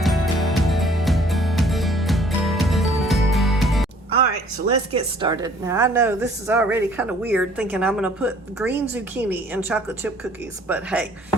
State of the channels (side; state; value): both; normal; correlation 0.57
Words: All right, so let's get started. Now I know this is already kind of weird thinking I'm gonna put green zucchini in chocolate chip cookies, but hey,